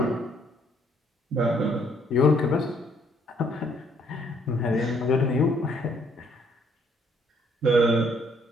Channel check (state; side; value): normal; both; correlation 0.66